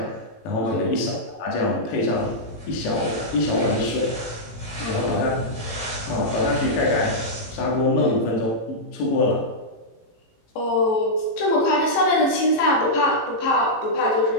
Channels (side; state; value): right; late; 18 ms